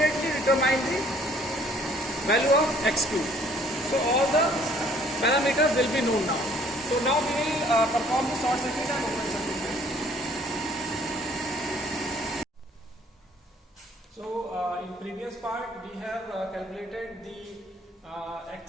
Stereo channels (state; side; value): normal; both; correlation 0.59